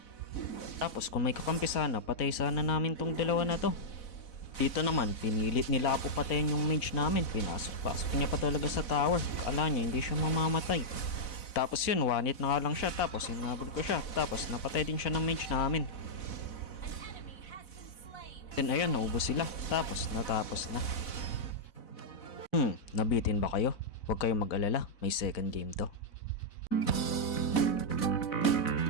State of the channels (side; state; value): right; late; 4.0 ms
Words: Tapos kung may kakampi sana, patay sana namin tong dalawa na to. Dito naman, pinilit nila ako patayin yung mage namin. Pinasok-pasok niya pa talaga sa tower. Akala niya hindi siya mamamatay. Tapos yun, one hit na nga lang siya. Tapos hinabol ko siya. Tapos napatay din siya ng mage namin. Then ayun, naubos sila. Tapos natapos na. Nabitin ba kayo? Huwag kayong mag-alala. May second game to.